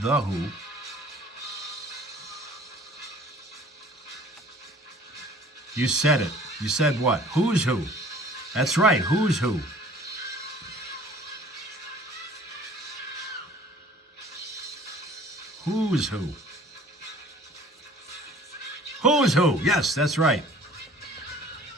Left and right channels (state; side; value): normal; both; correlation 0.50